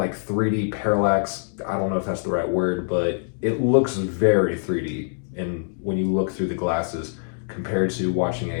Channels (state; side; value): silent; right; digital silence